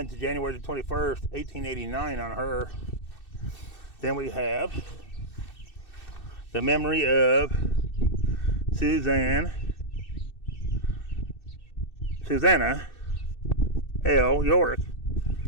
to January the 21st, 1889 on her. Then we have the memory of Susanna L. York,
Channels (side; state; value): right; late; 2.6 ms